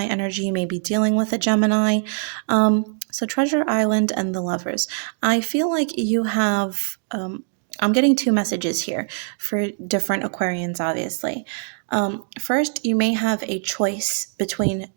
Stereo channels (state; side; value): silent; left; 64 dB below the other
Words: energy. You may be dealing with a Gemini. So Treasure Island and the Lovers. I feel like you have, I'm getting two messages here for different Aquarians, obviously. First, you may have a choice between